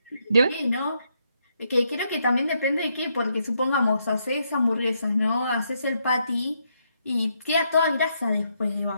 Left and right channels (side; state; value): both; inverted; correlation -0.77